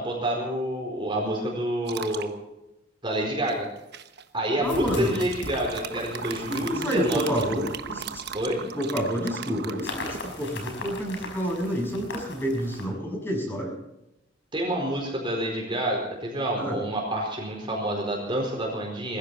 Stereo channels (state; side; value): normal; both; correlation 0.42